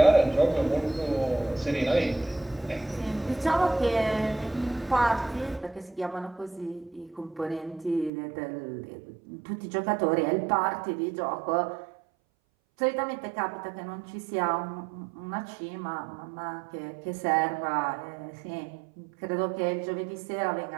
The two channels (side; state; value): left; drops out; at 8.1 s